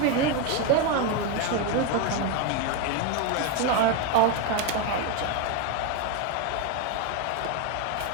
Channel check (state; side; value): different; both; correlation 0.02